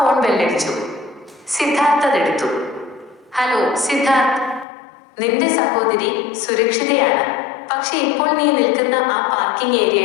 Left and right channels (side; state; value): right; drops out; at 4.7 s